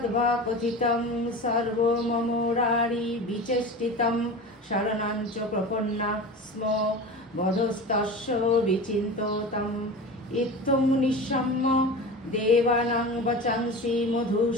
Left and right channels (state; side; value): normal; both; correlation 0.31